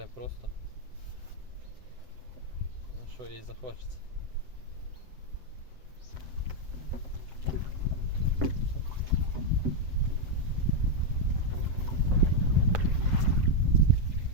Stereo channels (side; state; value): left; late; 7.9 ms